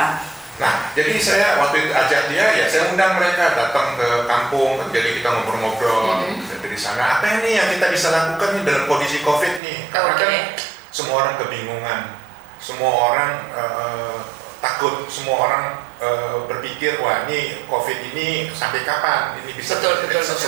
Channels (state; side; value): drops out; left; at 9.6 s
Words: Nah, jadi saya waktu itu ajak dia, ya saya undang mereka datang ke kampung, jadi kita ngobrol-ngobrol dari sana. Apa ini yang kita bisa lakukan nih dalam kondisi COVID nih? Karena kan semua orang kebingungan, semua orang takut, semua orang berpikir, wah ini COVID ini sampai kapan? Ini bisa